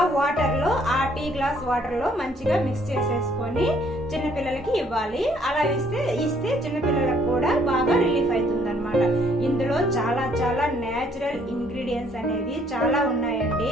వాటర్ లో, ఆ టీ గ్లాస్ వాటర్ లో మంచిగా మిక్స్ చేసేసుకొని చిన్నపిల్లలకి ఇవ్వాలి. అలా ఇస్తే చిన్నపిల్లలకు కూడా బాగా రిలీఫ్ అవుతుంది అనమాట. ఇందులో చాలా చాలా నేచురల్ ఇంగ్రీడియంట్స్ అనేవి చాలా ఉన్నాయండి.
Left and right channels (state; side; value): normal; both; correlation 0.64